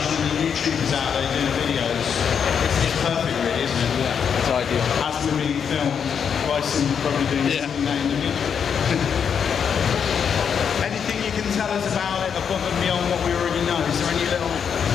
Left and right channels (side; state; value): right; quieter; 7.3 dB